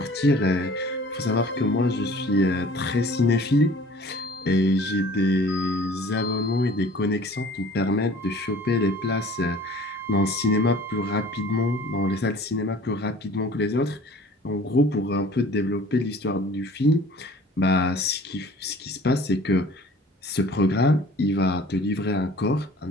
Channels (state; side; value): normal; both; correlation 0.49